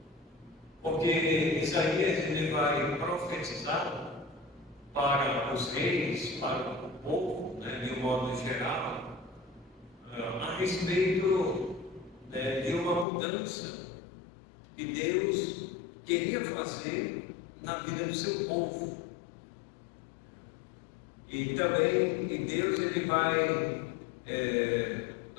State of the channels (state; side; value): drops out; right; at 13.1 s